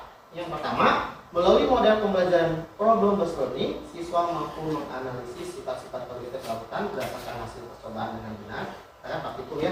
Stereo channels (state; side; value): identical; both; correlation 1.00